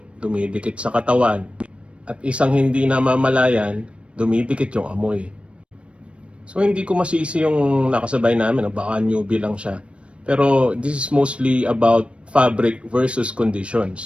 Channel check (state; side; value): late; left; 0.060 ms